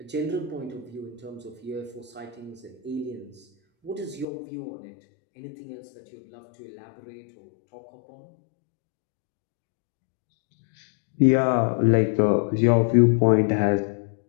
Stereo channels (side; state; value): right; drops out; at 4.2 s